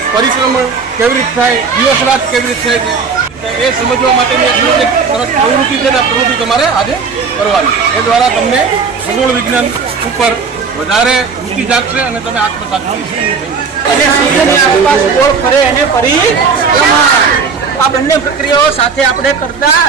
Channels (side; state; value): left; quieter; 5.3 dB